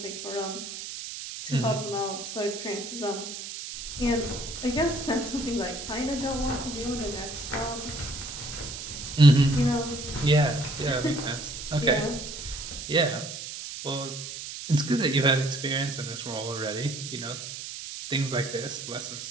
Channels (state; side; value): noise; right; hiss, 8 dB below the sound